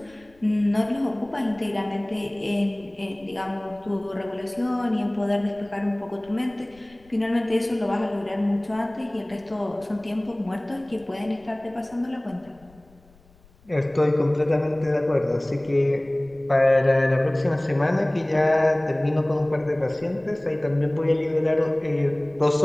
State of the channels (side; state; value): left; noise; rumble, 29 dB below the sound